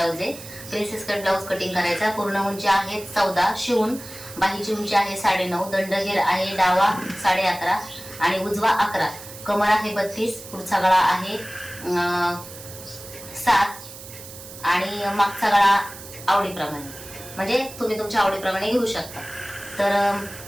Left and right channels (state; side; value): noise; right; hiss, 15 dB below the sound